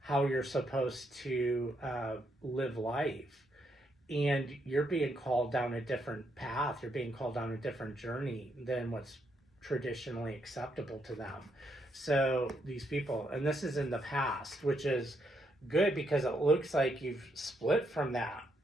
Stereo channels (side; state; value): both; normal; correlation 0.77